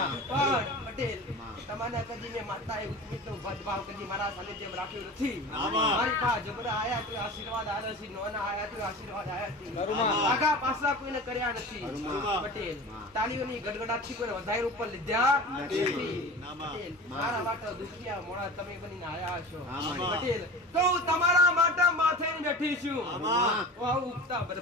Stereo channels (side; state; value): both; normal; correlation 0.35